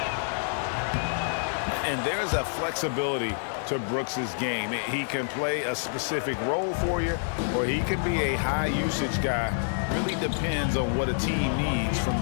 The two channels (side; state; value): right; silent; 60 dB below the other